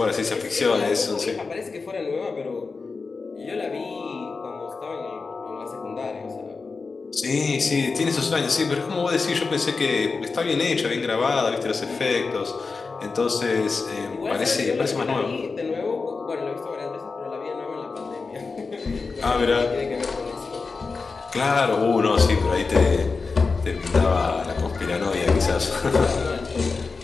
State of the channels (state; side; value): quieter; right; 4.4 dB